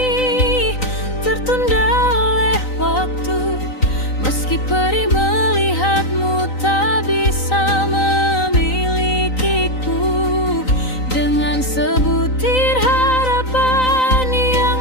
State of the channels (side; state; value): right; late; 3.9 ms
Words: tertunda oleh waktu, meski perih melihatmu tak bisa memilikiku. Dengan sebutir harapan yang